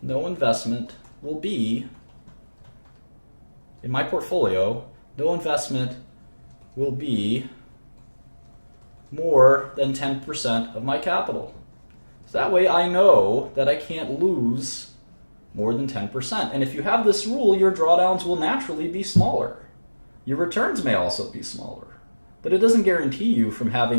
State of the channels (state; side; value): inverted; both; correlation -1.00